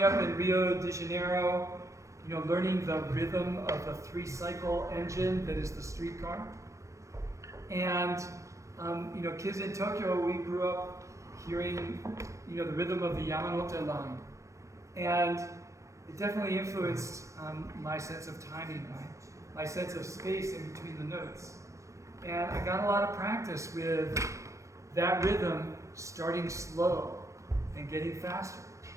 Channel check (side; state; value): left; late; 0.15 ms